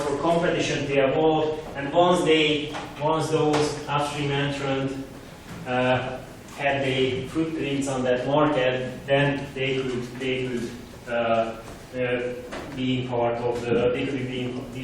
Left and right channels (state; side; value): identical; both; correlation 1.00